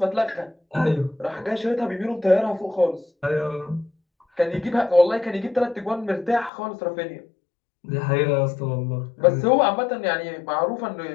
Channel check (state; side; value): drops out; right; at 6.5 s